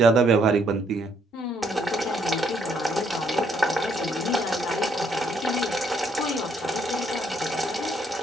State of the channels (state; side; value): normal; both; correlation 0.69